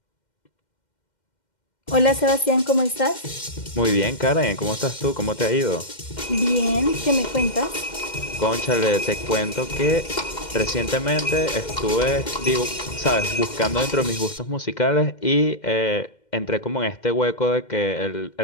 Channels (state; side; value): late; right; 2.1 ms